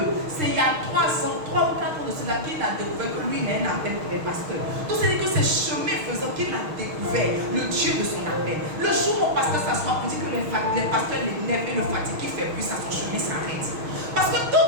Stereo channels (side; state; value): left; late; 6.4 ms